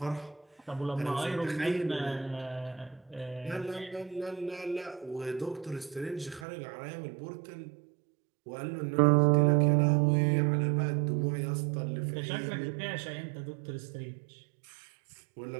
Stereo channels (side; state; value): left; drops out; at 6.5 s